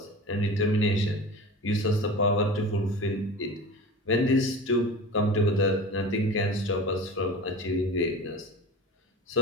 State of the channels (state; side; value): normal; both; correlation 0.34